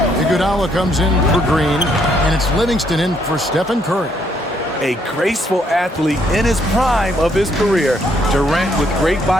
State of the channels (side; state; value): both; normal; correlation 0.71